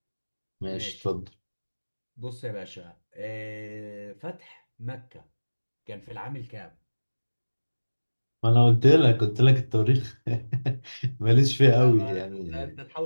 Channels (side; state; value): both; inverted; correlation -1.00